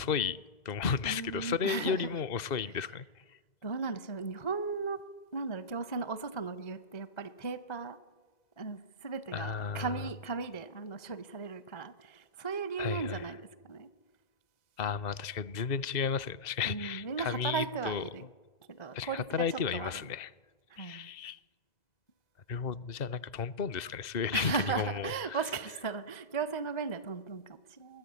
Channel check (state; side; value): late; right; 2.0 ms